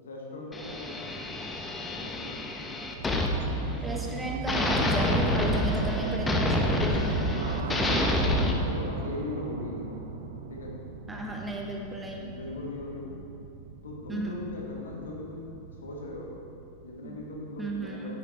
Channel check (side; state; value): both; normal; correlation 0.21